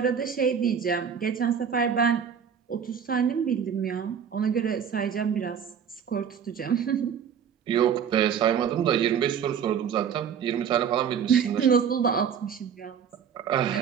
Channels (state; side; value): quieter; left; 7.7 dB